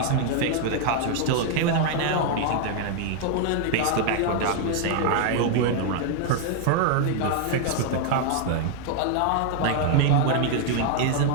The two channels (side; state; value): both; different; correlation 0.00